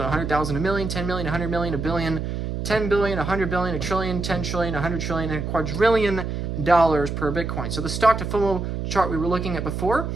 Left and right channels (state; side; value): noise; right; hum, 4 dB below the sound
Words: 100,000, a million, 10 million, 100 million, a billion, 10 billion, 100 billion, a trillion, 10 trillion, 100 trillion, and a quadrillion dollars per Bitcoin. So the Stock-to-FOMO chart we were looking at before